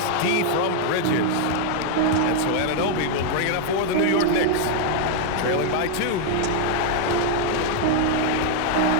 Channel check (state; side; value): different; both; correlation 0.00